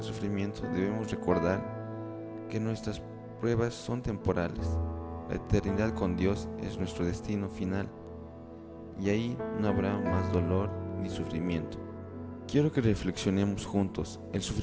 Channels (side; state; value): both; identical; correlation 1.00